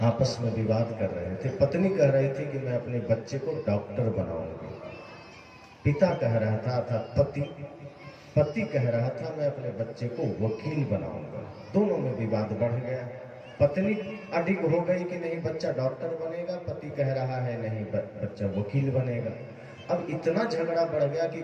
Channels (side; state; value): both; identical; correlation 1.00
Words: आपस में विवाद कर रहे थे। पत्नी कह रही थी कि मैं अपने बच्चे को डॉक्टर बनाऊंगी। पिता कह रहा था अर्थात पति कह रहा था मैं अपने बच्चे को वकील बनाऊंगा। दोनों में विवाद बढ़ गया। पत्नी अडिग हो गई कि नहीं बच्चा डॉक्टर बनेगा, पति कह रहा है नहीं बच्चा वकील बनेगा। अब इतना झगड़ा बढ़ गया कि